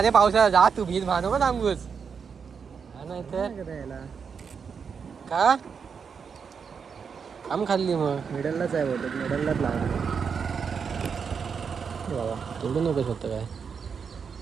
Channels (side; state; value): left; quieter; 6.2 dB